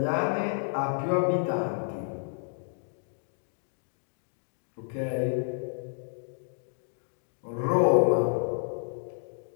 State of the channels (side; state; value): right; silent; digital silence